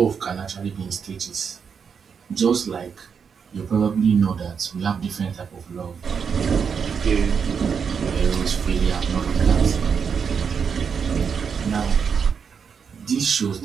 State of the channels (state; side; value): quieter; left; 6.5 dB